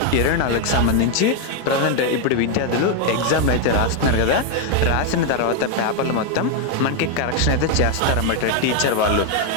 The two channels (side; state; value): both; different; correlation 0.01